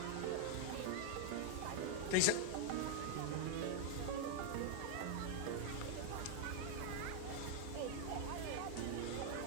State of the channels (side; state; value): both; different; correlation 0.00